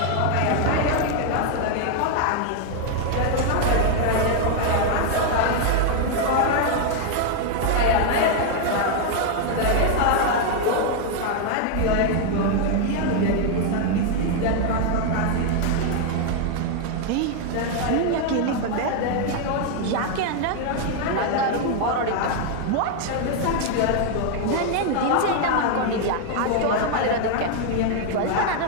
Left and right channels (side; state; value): both; different; correlation 0.00